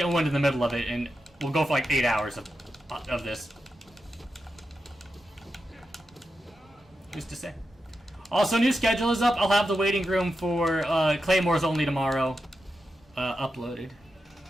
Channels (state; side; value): normal; both; correlation 0.89